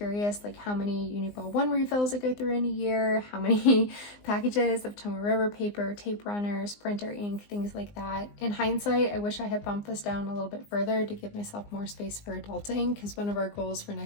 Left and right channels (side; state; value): right; late; 19 ms